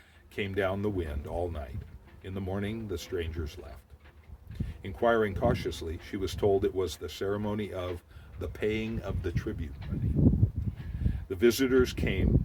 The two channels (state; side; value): identical; both; correlation 1.00